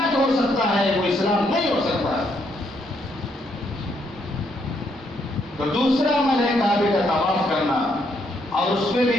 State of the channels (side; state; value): both; normal; correlation 0.74